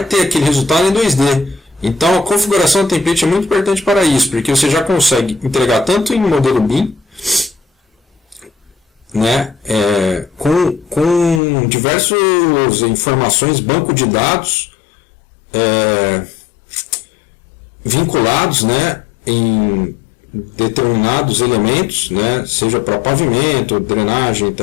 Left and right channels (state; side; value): drops out; right; at 11.4 s